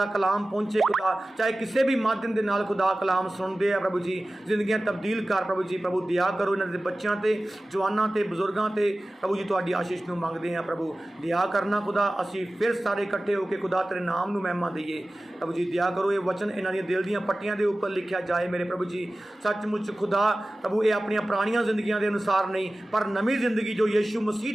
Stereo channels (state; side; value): normal; both; correlation 0.96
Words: ਕਲਾਮ ਪਹੁੰਚੇ ਖੁਦਾ, ਚਾਹੇ ਕਿਸੇ ਵੀ ਮਾਧਿਅਮ ਦੇ ਨਾਲ ਖੁਦਾ ਕਲਾਮ ਸੁਣਦੇ ਆ ਪ੍ਰਭੂ ਜੀ। ਜ਼ਿੰਦਗੀਆਂ ਤਬਦੀਲ ਕਰ ਪ੍ਰਭੂ ਜੀ। ਪ੍ਰਭੂ ਦਇਆ ਕਰੋ ਇਹਨਾਂ ਦੇ ਬੱਚਿਆਂ ਤੇ, ਜਵਾਨਾਂ ਤੇ, ਬਜ਼ੁਰਗਾਂ ਤੇ ਪ੍ਰਭੂ ਜੀ। ਤੁਹਾਡੀ ਆਸ਼ੀਸ਼ ਨੂੰ ਮੰਗਦੇ ਆ ਪ੍ਰਭੂ, ਦਇਆ ਕਰਨਾ ਖੁਦਾ। ਅਸੀਂ ਫਿਰ ਸਾਰੇ ਇਕੱਠੇ ਹੋ ਕੇ ਖੁਦਾ ਤੇਰੇ ਨਾਮ ਨੂੰ ਮਹਿਮਾ ਦਈਏ ਪ੍ਰਭੂ ਜੀ। ਦਇਆ ਕਰੋ, ਇਹ ਵਚਨ ਇਹਨਾਂ ਦੀਆਂ ਦਿਲ ਦੀਆਂ ਪੱਟੀਆਂ ਦੇ ਉੱਪਰ ਲਿਖਿਆ ਜਾਏ ਮੇਰੇ ਪ੍ਰਭੂ ਜੀ। ਸੱਚਮੁੱਚ ਖੁਦਾ ਪ੍ਰਭੂ ਇਹ ਆਪਣੀਆਂ ਪੁਰਾਣੀਆਂ ਜ਼ਿੰਦਗੀਆਂ ਦੇ ਅਨੁਸਾਰ ਨਹੀਂ, ਪਰ ਨਵੀਂ ਜ਼ਿੰਦਗੀ ਜੋ ਯਿਸੂ ਮਸੀਹ